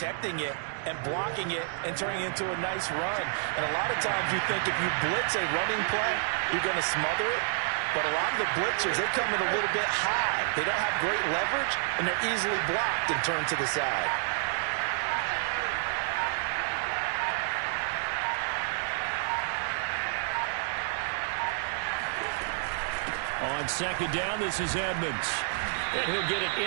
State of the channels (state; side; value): silent; left; digital silence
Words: it and blocking it and turning it into a nice run. And a lot of times you think if you blitz a running play, you're going to smother it. but a lot of the blitzers, they come in a little bit high. They don't have great leverage, and they're easily blocked and turned to the side. On second down, this is Edmonds. And he'll get it